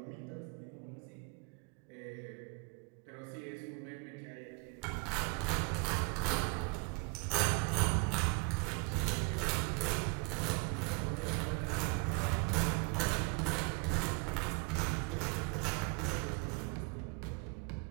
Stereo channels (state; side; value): quieter; left; 31.9 dB